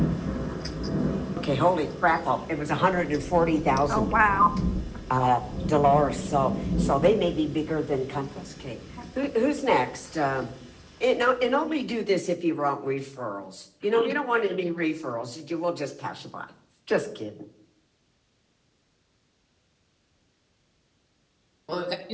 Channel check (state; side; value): identical; both; correlation 1.00